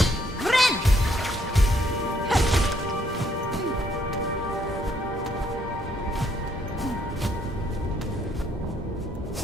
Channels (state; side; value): normal; both; correlation 0.69